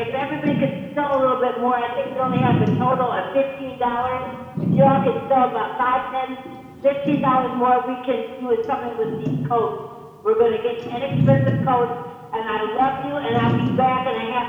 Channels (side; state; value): both; identical; correlation 1.00